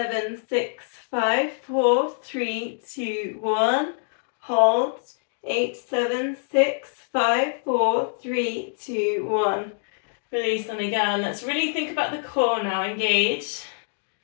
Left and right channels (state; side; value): silent; right; digital silence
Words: 6, 5, 4, 3, 2, 1. Hold. 8, 7, 6, 5, 4, 3, 2, 1. Release on again. Let's really think about the core now. Engage.